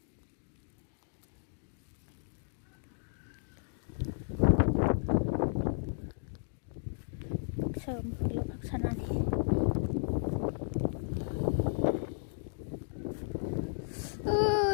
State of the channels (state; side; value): silent; right; digital silence